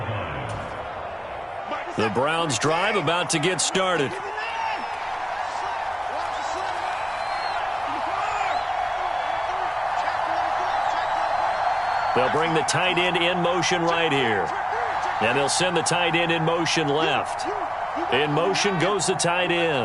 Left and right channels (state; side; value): identical; both; correlation 1.00